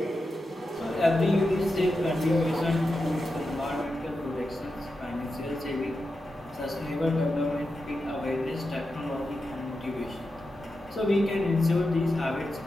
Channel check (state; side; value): normal; both; correlation 0.89